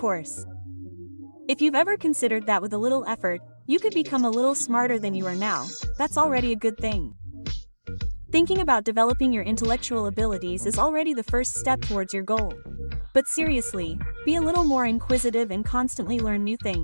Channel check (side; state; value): both; inverted; correlation -1.00